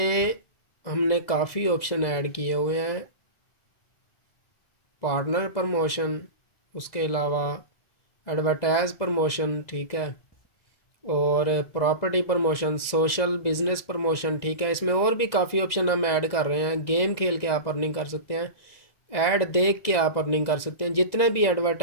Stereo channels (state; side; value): late; right; 2.0 ms